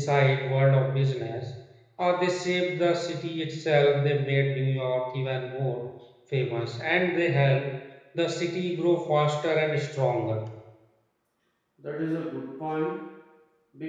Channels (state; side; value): identical; both; correlation 1.00